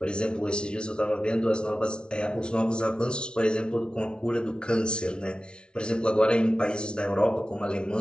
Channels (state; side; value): late; right; 0.056 ms